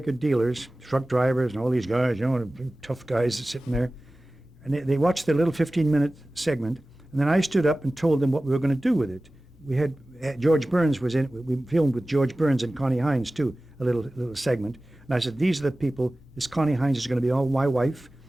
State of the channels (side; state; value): both; normal; correlation 0.97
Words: dealers, truck drivers, and all these guys, tough guys sitting there. And they watched the little 15-minute segment, and then I stood up and told them what we were going to do with it. We had George Burns was in it. We filmed with George Burns and Connie Hines too, a little segment. And I said, these are the people. This Connie Hines is going to be all my wife,